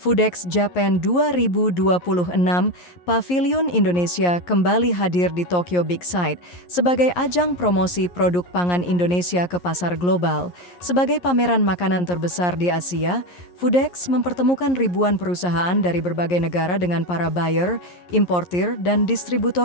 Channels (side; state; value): right; late; 11 ms